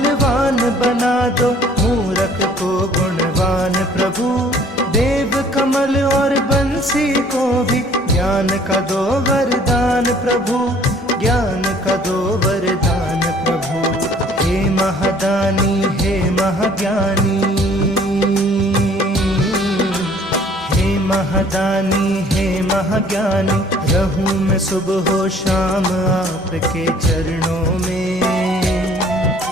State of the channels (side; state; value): both; normal; correlation 0.56